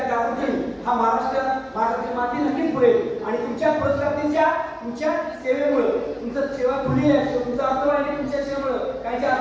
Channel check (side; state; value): both; identical; correlation 1.00